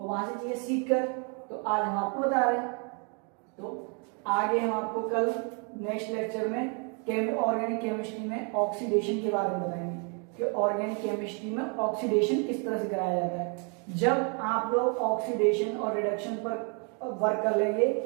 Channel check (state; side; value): quieter; left; 37.0 dB